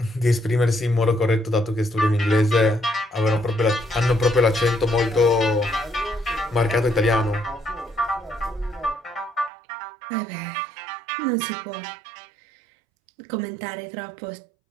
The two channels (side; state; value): left; drops out; at 9.5 s